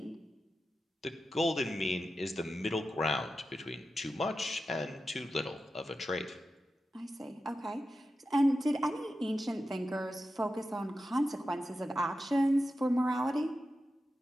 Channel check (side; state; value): both; normal; correlation 0.91